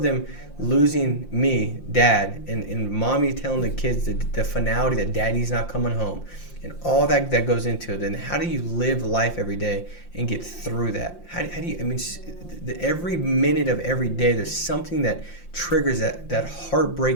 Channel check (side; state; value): right; late; 5.7 ms